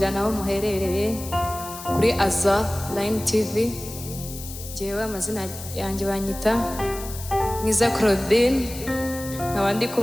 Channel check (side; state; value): left; noise; hiss, 12 dB below the sound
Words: aho muherereye kuri Azar Line TV. Jewe amazina yanjye banyita Mwiza Claudine, nkaba ndi